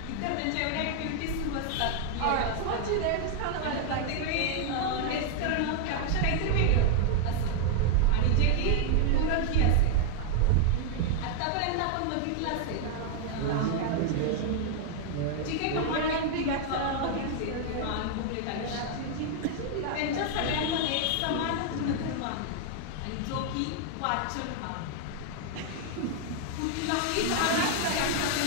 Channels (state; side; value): different; both; correlation 0.00